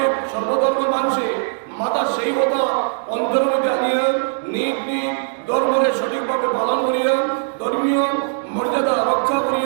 সর্বধর্মের মানুষে মাতা সেই কথা অন্তরের মধ্যে আনিয়া নিজ নিজ ধর্মরে সঠিকভাবে পালন করিয়া ধর্মীয় মর্যাদা রক্ষা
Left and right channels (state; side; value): silent; left; digital silence